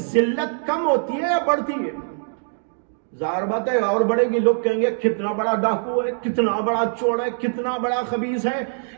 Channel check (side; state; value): left; silent; digital silence